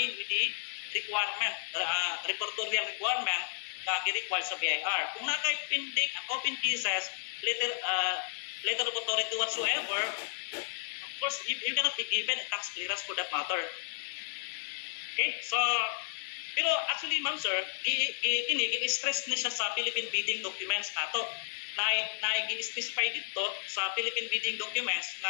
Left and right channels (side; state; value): right; silent; 56 dB below the other